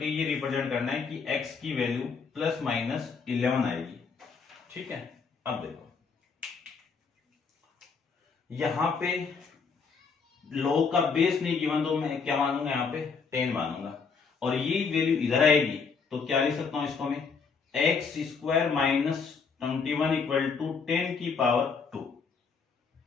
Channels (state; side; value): quieter; right; 5.3 dB